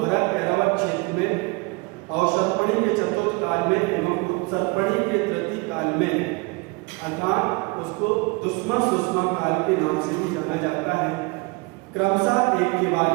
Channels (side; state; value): left; quieter; 27.2 dB